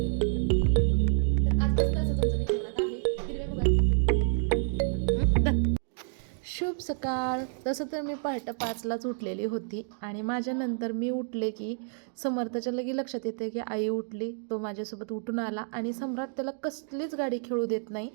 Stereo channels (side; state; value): left; silent; digital silence